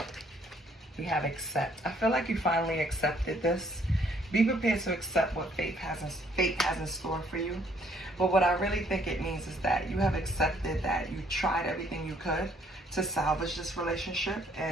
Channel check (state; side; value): normal; both; correlation 0.65